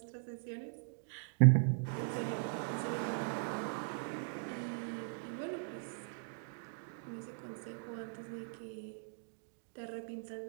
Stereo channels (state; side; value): silent; left; digital silence